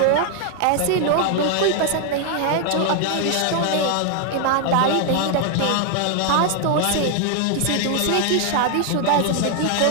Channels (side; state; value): both; different; correlation 0.00